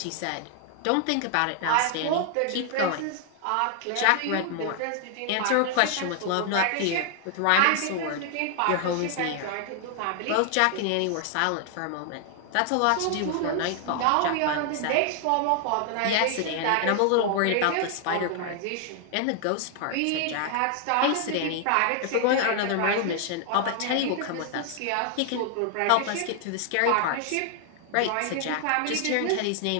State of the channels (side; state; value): both; different; correlation 0.00